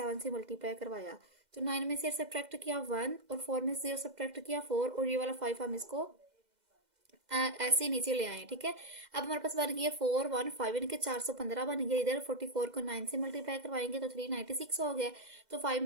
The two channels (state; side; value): late; left; 2.0 ms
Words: से मल्टीप्लाई करवाया। तो 9 में से सब्ट्रैक्ट किया 1, और 4 में से 0 सब्ट्रैक्ट किया 4, और ये वाला 5 हम इसको ऐसे ही नीचे ले आए, ठीक है। अब हमारे पास बन गया 415, यानी कि 415 बन गया। इधर 44 को 9 से मल्टीप्लाई करवाएंगे तो 396 हो गया। तो 5